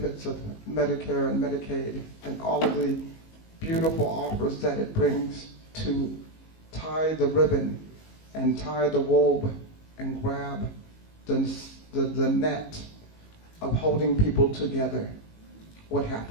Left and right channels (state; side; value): late; right; 19 ms